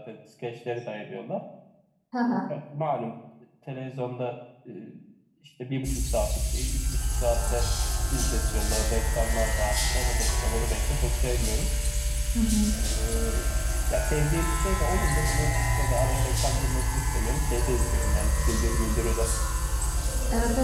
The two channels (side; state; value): both; identical; correlation 1.00